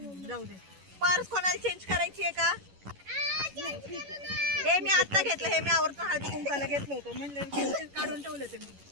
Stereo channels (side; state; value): left; late; 11 ms